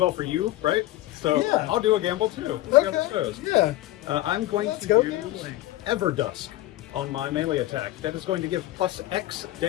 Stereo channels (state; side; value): quieter; right; 16.2 dB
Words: for you, right? So Yeah. I'll do a gamble too. Let's see how this Okay. goes. Yeah. I'm going Let's to go use gambling. Everdusk on my melee attack. That is going to give plus X